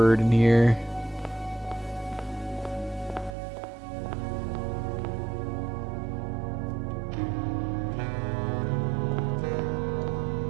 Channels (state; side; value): drops out; left; at 3.4 s